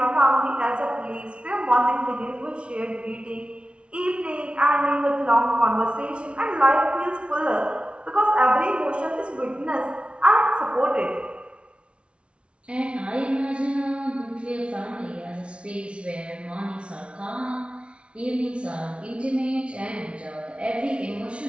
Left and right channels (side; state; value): left; late; 0.059 ms